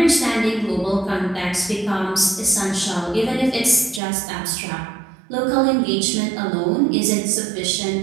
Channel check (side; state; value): left; drops out; at 4.0 s